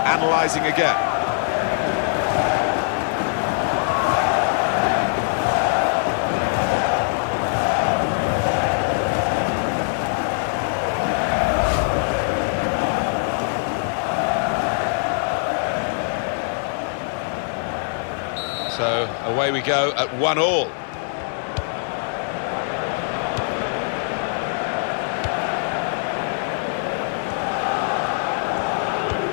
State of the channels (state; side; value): silent; right; digital silence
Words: analysing again. So away we go at 1-1.